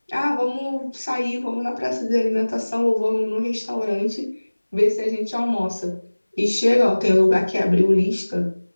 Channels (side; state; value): both; inverted; correlation -1.00